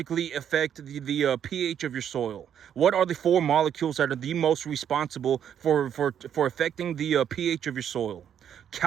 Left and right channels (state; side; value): quieter; left; 9.1 dB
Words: affect the pH of your soil? What are the 4 molecules that are the most responsible for affecting the pH of your soil?